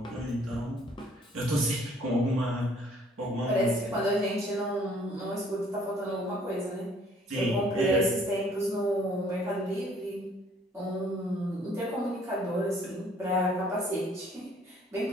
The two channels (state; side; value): normal; both; correlation 0.59